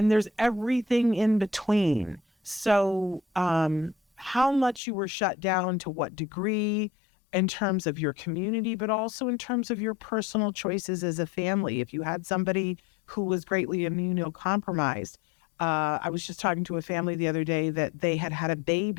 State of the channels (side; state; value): right; drops out; at 4.8 s